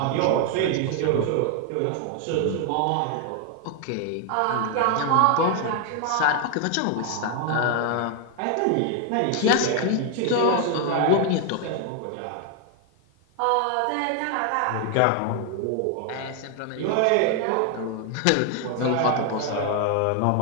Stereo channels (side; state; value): both; different; correlation 0.00